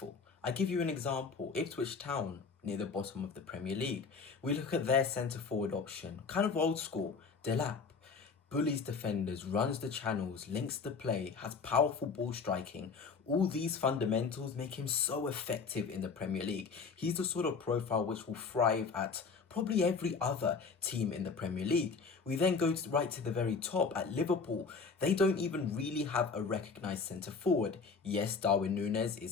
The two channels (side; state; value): right; quieter; 5.0 dB